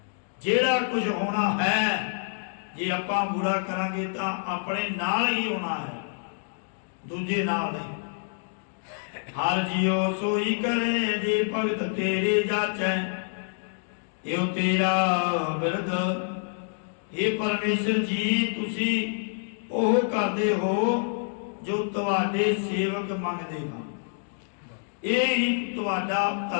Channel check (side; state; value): right; silent; digital silence